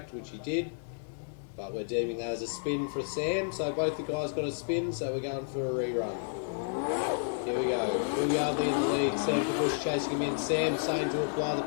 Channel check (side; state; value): right; silent; digital silence